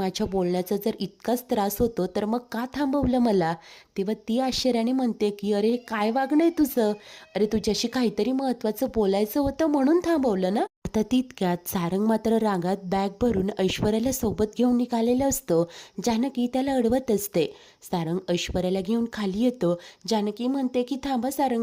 बोलण्याचा जर इतकाच त्रास होतो तर मग का थांबवलं मला? तेव्हा ती आश्चर्याने म्हणते की अरे काय वागणं आहे तुझं? अरे तुझ्याशी काहीतरी महत्त्वाचं बोलायचं होतं म्हणून थांबवलं ना. आता तितक्यात सारंग मात्र रागात बॅग भरून ऐश्वर्याला सोबत घेऊन निघालेलं असतो. जानकी त्याला अडवत असते. सारंग ऐश्वर्याला घेऊन खाली येतो. जानकी म्हणते की थांबा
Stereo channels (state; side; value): identical; both; correlation 1.00